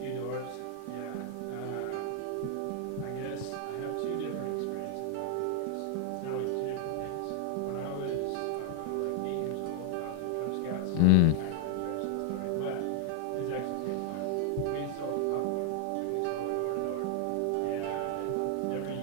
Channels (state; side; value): different; both; correlation 0.00